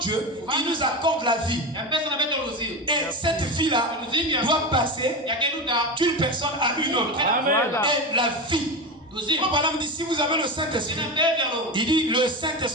il nous accorde la vie. Et cette vie-là doit passer d'une personne à une autre. Et la vie. Frère dit, si vous avez le Saint-Esprit, il dit le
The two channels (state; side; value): normal; both; correlation 0.21